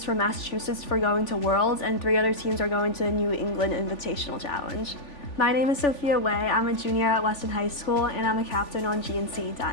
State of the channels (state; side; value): late; right; 3.4 ms